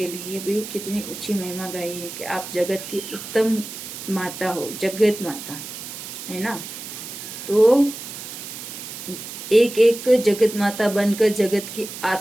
लिए भी कितनी ऊंची महिमा गाई है कि आप जगत की उत्तम माता हो, जगत माता है ना। तो एक एक जगत माता बनकर जगत की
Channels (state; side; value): noise; right; hiss, 10 dB below the sound